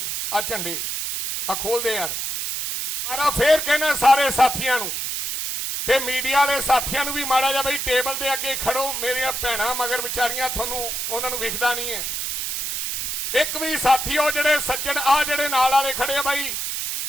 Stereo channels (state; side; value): noise; right; hiss, 3 dB below the sound